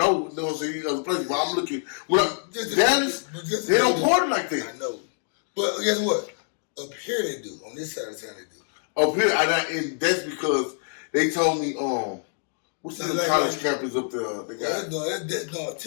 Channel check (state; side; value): silent; right; 61 dB below the other